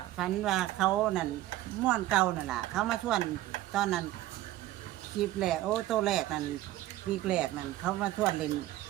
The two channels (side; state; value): left; quieter; 15.1 dB